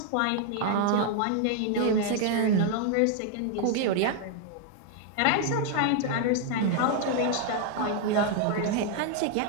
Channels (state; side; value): different; both; correlation 0.00